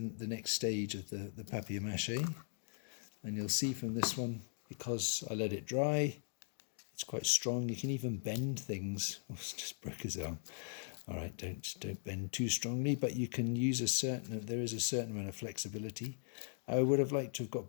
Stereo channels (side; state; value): right; silent; digital silence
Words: next stage of the PapiMache. And you'll see from this one, because I let it dry, it's quite strong. You can even bend things. Oh, it's just broke his arm. All right, don't bend too strongly, but you can use there is a certain amount of flexibility. I would have liked to have